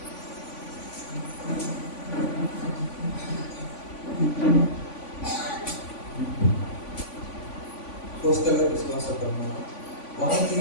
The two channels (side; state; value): right; late; 3.5 ms